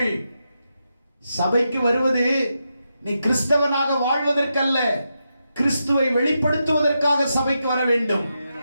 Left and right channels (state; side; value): inverted; both; correlation -0.86